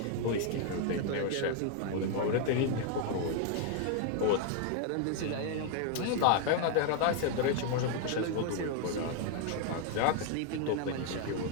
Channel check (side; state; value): both; different; correlation 0.00